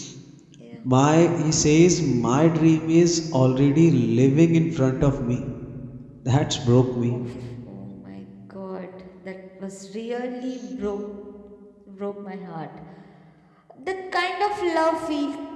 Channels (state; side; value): identical; both; correlation 1.00